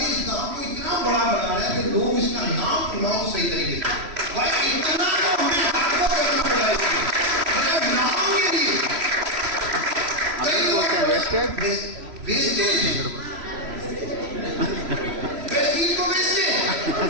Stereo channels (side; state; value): left; late; 3.0 ms